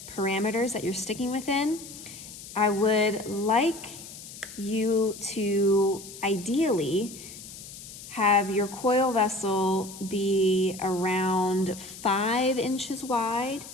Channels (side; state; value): left; noise; hiss, 14 dB below the sound